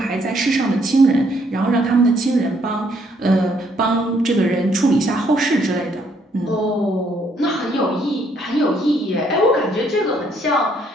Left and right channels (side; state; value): both; normal; correlation 0.69